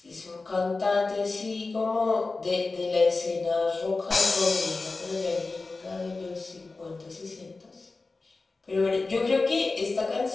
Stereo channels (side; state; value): right; quieter; 3.7 dB